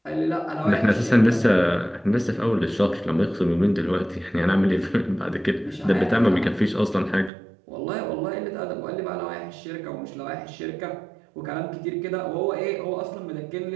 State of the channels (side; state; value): left; drops out; at 7.3 s